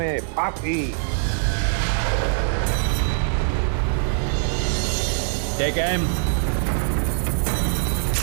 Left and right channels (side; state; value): left; silent; 58 dB below the other